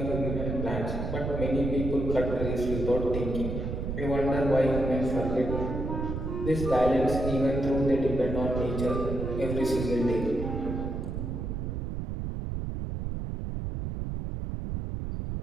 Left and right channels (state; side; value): noise; right; rumble, 4 dB below the sound